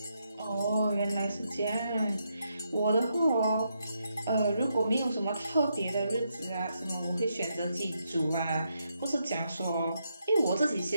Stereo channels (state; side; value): inverted; both; correlation -0.80